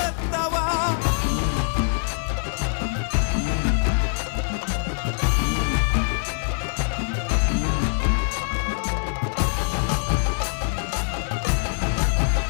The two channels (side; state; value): right; silent; digital silence